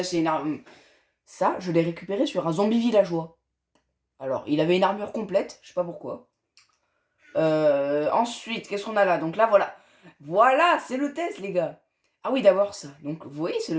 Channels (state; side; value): identical; both; correlation 1.00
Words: c'est une arme... Ça, je l'ai récupéré sur un zombie villageois. Alors, il avait une armure complète, je sais pas pourquoi. Ensuite, qu'est-ce qu'on a là? Donc là, voilà. Voilà, c'est le test, les gars. Ah oui, d'abord ça. Donc, vous voyez ce